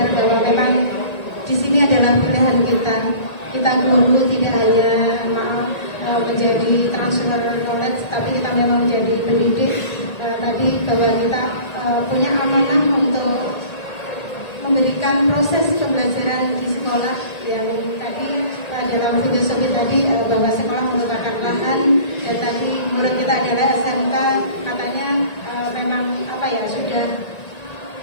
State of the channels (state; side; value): late; right; 1.8 ms